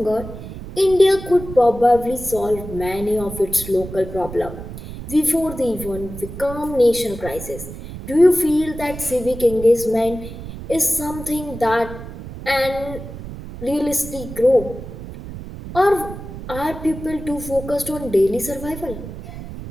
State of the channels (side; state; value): right; noise; rumble, 11 dB below the sound